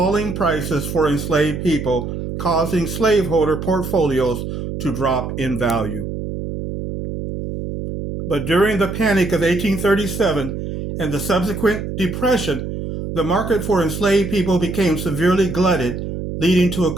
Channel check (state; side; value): noise; right; hum, 6 dB below the sound